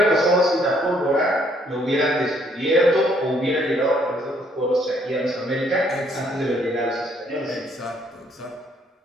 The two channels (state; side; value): normal; both; correlation 0.67